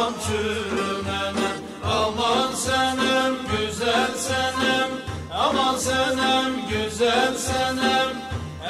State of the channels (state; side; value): identical; both; correlation 1.00